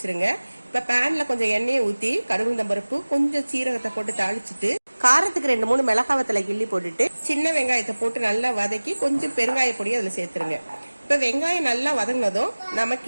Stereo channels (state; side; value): inverted; both; correlation -1.00